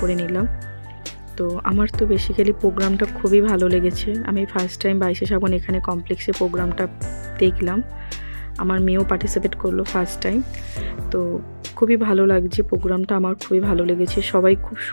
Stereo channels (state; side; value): inverted; both; correlation -1.00